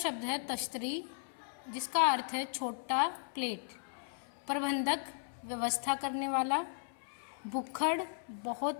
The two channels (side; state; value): right; silent; 54 dB below the other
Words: है तश्तरी, जिसका अर्थ है छोटा प्लेट। प्रबंधक, व्यवस्था करने वाला। भुक्खड़,